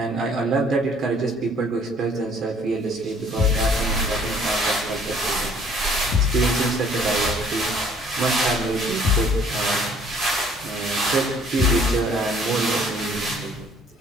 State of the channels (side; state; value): both; normal; correlation 0.58